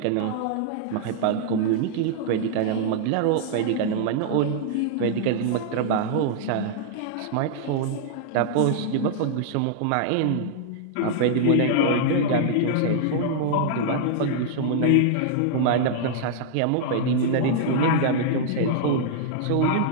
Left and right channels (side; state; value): both; different; correlation -0.01